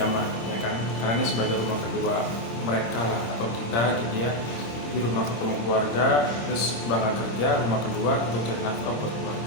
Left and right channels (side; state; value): right; late; 26 ms